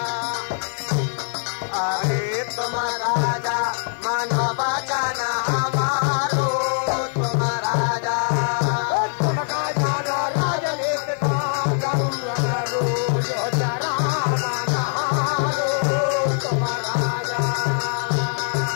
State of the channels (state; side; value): silent; right; digital silence